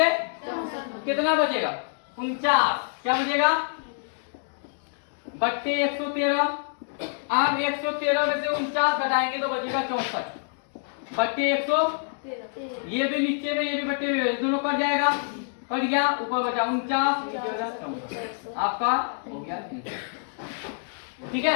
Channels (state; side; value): silent; right; digital silence